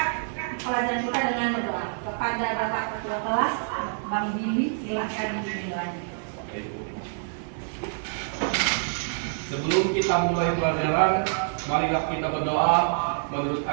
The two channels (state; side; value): silent; left; 60 dB below the other